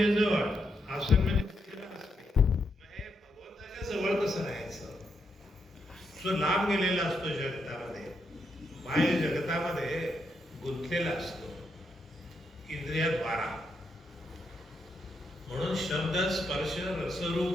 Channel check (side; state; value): both; normal; correlation 0.81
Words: जवळ, आसन म्हणजे भगवंताच्या जवळ कसं राहायचं. जो लांब गेलेला असतो जगतामध्ये, बाह्य जगतामध्ये गुंतलेला असतो इंद्रियाद्वारा. म्हणून शब्द, स्पर्श,